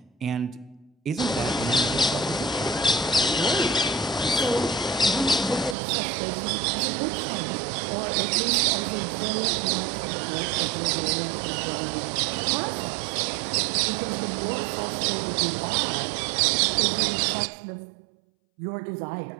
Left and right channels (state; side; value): drops out; left; at 5.8 s